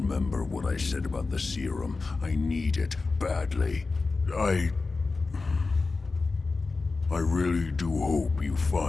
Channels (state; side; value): quieter; right; 3.9 dB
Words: what I said about the serum. I need it badly. I really do hope you